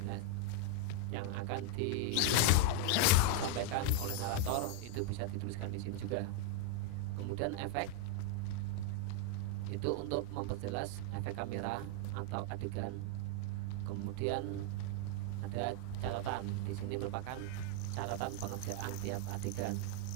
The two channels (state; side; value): different; both; correlation 0.00